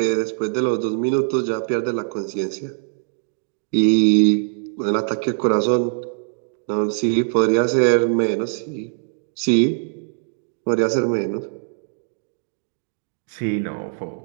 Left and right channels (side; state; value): left; silent; digital silence